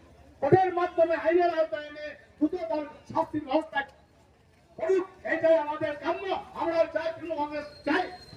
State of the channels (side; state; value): both; identical; correlation 1.00